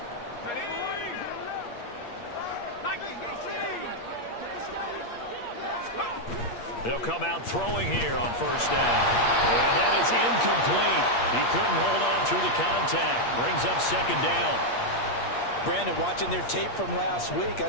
They'll come out throwing here on 1st down. And that is incomplete. He couldn't hold on through the contact. Brings up 2nd down. Brandon, watching their tape from last week, I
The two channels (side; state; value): right; late; 8.5 ms